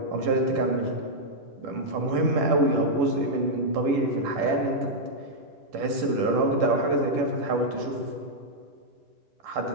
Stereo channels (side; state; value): left; late; 10 ms